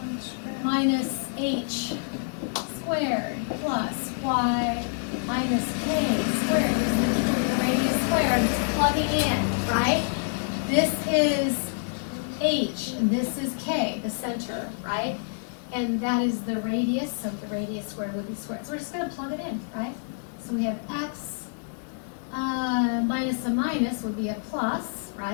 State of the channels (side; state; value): right; silent; digital silence